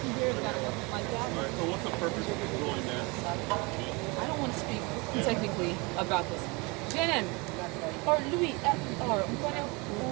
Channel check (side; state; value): left; quieter; 27.3 dB